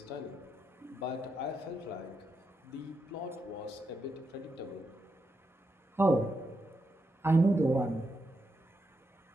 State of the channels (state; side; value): normal; both; correlation 0.84